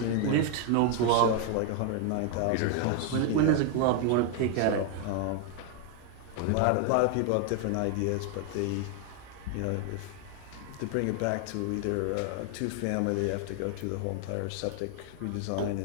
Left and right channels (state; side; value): different; both; correlation 0.00